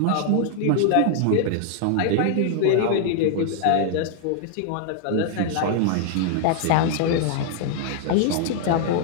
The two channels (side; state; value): both; different; correlation 0.00